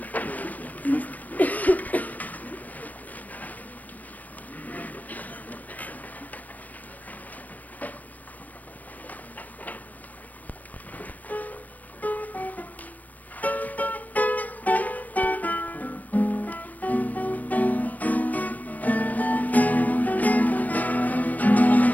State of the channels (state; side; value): late; right; 0.078 ms